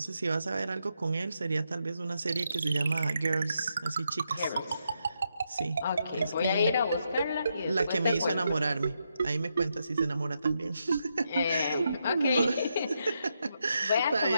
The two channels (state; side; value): inverted; both; correlation -0.82